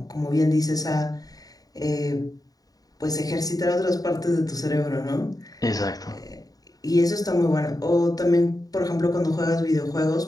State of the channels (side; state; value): right; late; 0.18 ms